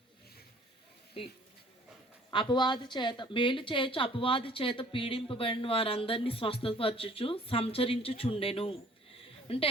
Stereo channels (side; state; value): both; normal; correlation 0.55